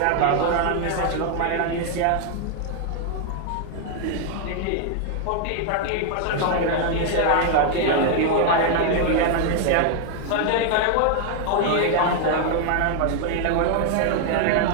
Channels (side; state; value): both; different; correlation 0.00